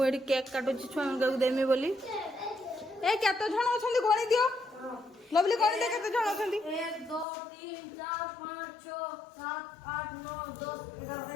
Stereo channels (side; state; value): right; drops out; at 7.2 s